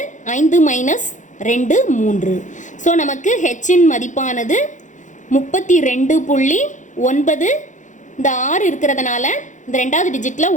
5 மைனஸ் 2 3. ஸோ நமக்கு ஹெச்சின் மதிப்பானது 32.9. இந்த 6 இருக்கிறதுனால இந்த 2வது டிஜிட்டில்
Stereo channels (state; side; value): late; right; 0.36 ms